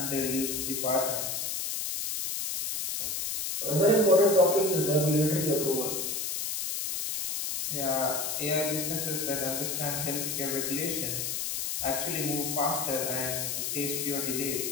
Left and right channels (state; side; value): noise; left; hiss, 2 dB below the sound